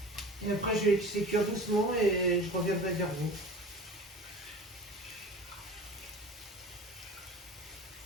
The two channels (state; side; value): normal; both; correlation 0.37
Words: Et après, je vais laisser cuire doucement et je reviendrai vers vous.